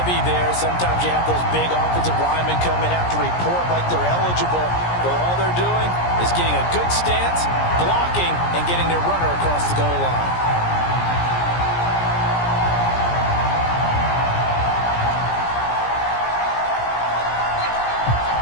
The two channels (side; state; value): right; late; 17 ms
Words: there. Sometimes you have those big offensive linemen come in, have to report like they're eligible. But all they're doing is getting a good stance, blocking, and getting their runner across the goal line.